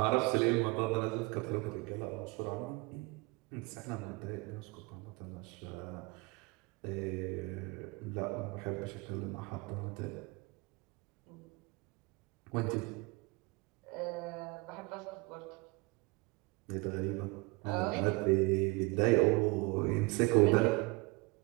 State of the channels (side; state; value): left; quieter; 26.1 dB